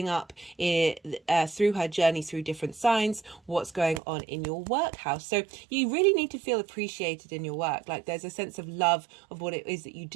up through her journey through different signs, what's going on in your work house. So you really need to feel appreciated in your work. Like there's a sense of love of what it is that you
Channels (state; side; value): drops out; left; at 4.0 s